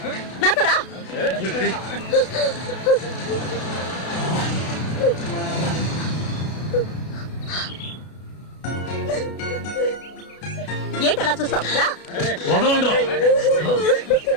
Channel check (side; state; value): right; late; 33 ms